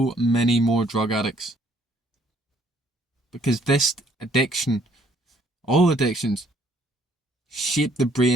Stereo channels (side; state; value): both; normal; correlation 0.64